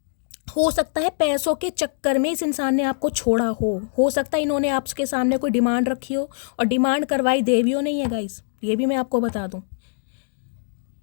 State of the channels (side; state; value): right; silent; digital silence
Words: हो सकता है पैसों के चक्कर में इस इंसान ने आपको छोड़ा हो सकता है इन्होंने आपके सामने कोई डिमांड रखी हो, और डिमांड करवाई देवियों नहीं है गाइस, ये भी मैं आपको बता दूं।